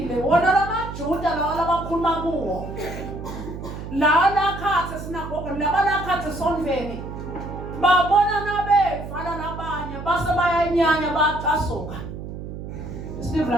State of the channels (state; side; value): noise; right; hum, 9 dB below the sound